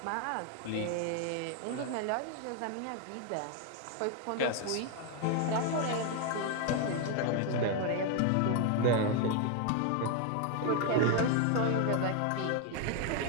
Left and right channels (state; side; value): different; both; correlation 0.01